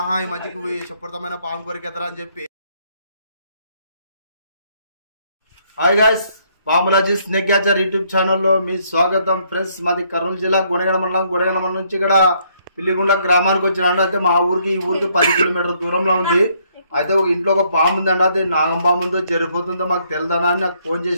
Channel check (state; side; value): inverted; both; correlation -0.69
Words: ఈ మధ్యకి విషపూరితమైన పాము కొరికెదరా అని చెప్పి. Hi guys, Bamulaji snake catcher YouTube ఛానల్లో మీ స్వాగతం. ఫ్రెండ్స్, మాది కర్నూలు జిల్లా గుణగణ మండలం నుంచి ఇక్కడ పిల్లిగుండ గ్రామానికి వచ్చినాడు. అయితే మా ఊరికి ఈ ఊరికి 10 కిలోమీటర్ల దూరంలో ఉంది. అయితే ఒక ఇంట్లో ఒక పాము ఉందండి. అది నాగం పాము ఉందో జరిపోతుందో మాకు తెలియదనా అని నాకు ఫోన్